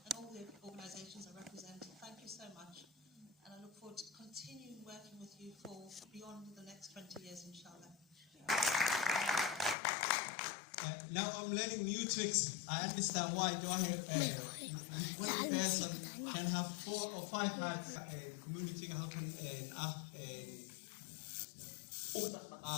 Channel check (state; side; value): drops out; right; at 9.8 s